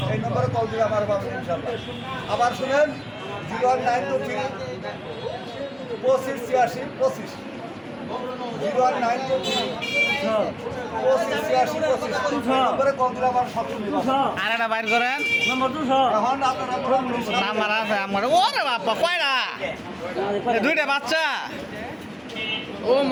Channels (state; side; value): identical; both; correlation 1.00